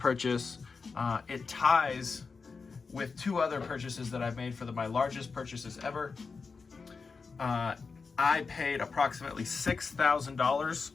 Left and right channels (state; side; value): quieter; right; 4.8 dB